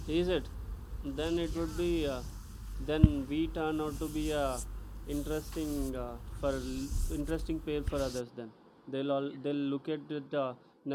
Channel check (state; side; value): identical; both; correlation 1.00